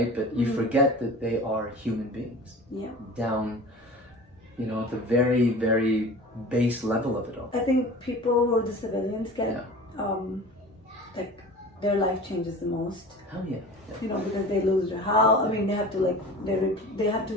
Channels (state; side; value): normal; both; correlation 0.38